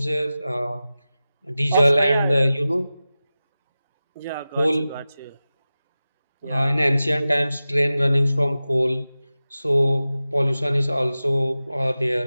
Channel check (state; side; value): inverted; both; correlation -0.95